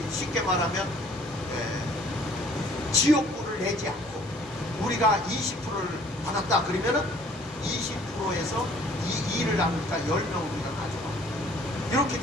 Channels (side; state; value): both; normal; correlation 0.56